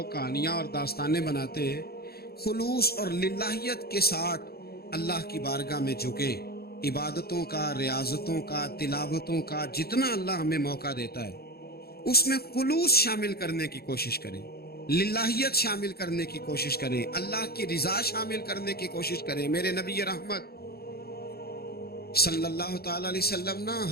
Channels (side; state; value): right; late; 0.45 ms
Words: کہانیاں اور داستانیں بناتے ہیں. خلوص اور للہیت کے ساتھ اللہ کی بارگاہ میں جھکیں. عبادتوں کا، ریاضتوں کا، تلاوتوں کا جتنا اللہ ہمیں موقع دیتا ہے اس میں خلوص شامل کرنے کی کوشش کریں، للہیت شامل کرنے کی کوشش کریں، اللہ کی رضا شامل کرنے کی کوشش کریں. میرے نبی رحمت صلی اللہ تعالی علیہ وسلم نا